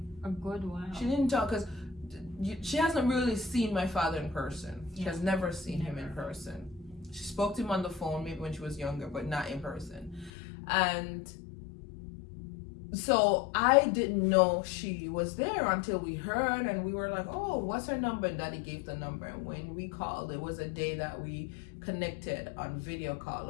a good while. She didn't talk because she hasn't really seen my father in person. She has never seen him in person. She spoke to him on the phone maybe when she was younger, but not in person. And so I didn't know she was there until we heard, and we were like, oh, what's her number? And Daddy gave the number. And when we called, it was a day that we connected on video call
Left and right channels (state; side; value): drops out; right; at 10.3 s